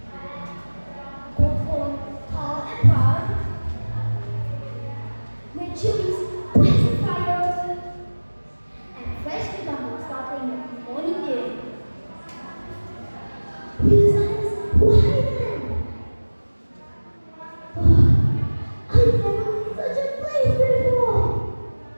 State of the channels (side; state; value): both; inverted; correlation -1.00